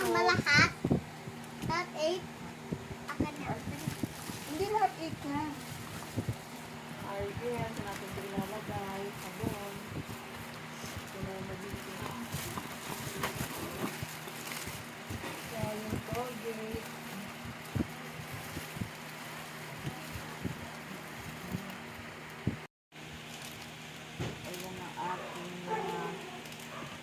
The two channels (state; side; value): identical; both; correlation 1.00